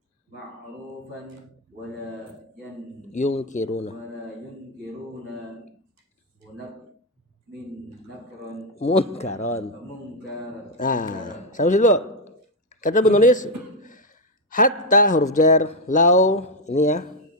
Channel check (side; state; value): both; normal; correlation 0.04